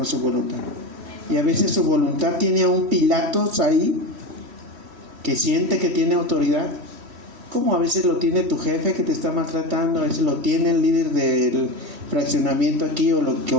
su voluntad. Y a veces su voluntad tiene a un Pilatos ahí que siente que tiene autoridad, como a veces lo tiene tu jefe que te está maltratando, a veces lo tiene el líder del fraccionamiento aquí, o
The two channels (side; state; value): left; late; 3.1 ms